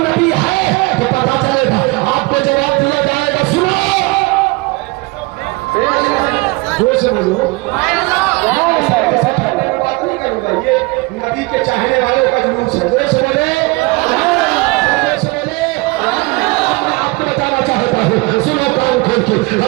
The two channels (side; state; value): left; quieter; 24.8 dB